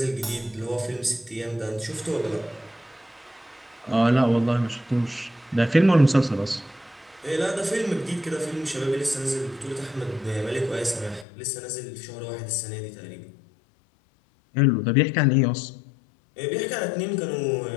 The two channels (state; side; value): drops out; right; at 11.2 s